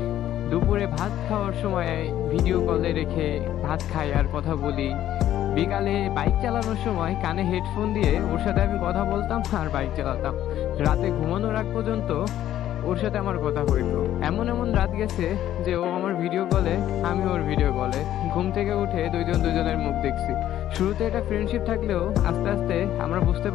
দুপুরে ভাত খাওয়ার সময় ভিডিও কলে রেখে ভাত খাই আর কথা বলি, বিকালে বাইক চালানোর সময় কানে হেডফোন দিয়ে ওর সাথে আমি কথা বলতাম আর বাইক চালাতাম। রাতে ঘুমানোর আগ পর্যন্ত ওর সাথে আমার কথা হইতো। এমন এমন রাত গেছে যে ও আমার ভিডিও কলে, আমি ওর ভিডিও কলে। ঘুম থেকে উঠে দুইজন দুইজনের মুখ দেখছি। শুরুতে এটা ফ্রেন্ডশিপ থাকলেও আস্তে আস্তে আমরা বুঝতে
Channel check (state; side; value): quieter; right; 12.1 dB